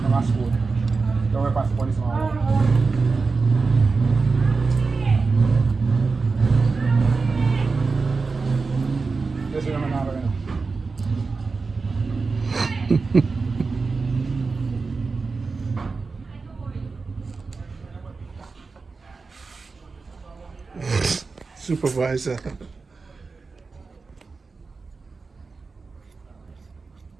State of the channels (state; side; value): quieter; left; 4.3 dB